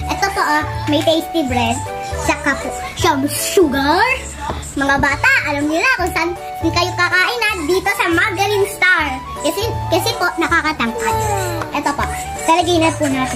Ito po, may tasty bread, saka po siyang sugar. Mga bata, alam niyo na kung saan kayo kakain dito sa Margarine Star. Kasi po, nakakatangkad. Ito po, talagyan na po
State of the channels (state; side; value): identical; both; correlation 1.00